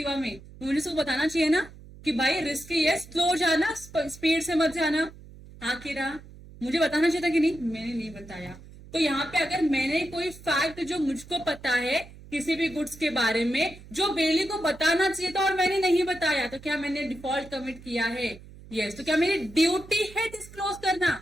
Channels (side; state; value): right; noise; hum, 19 dB below the sound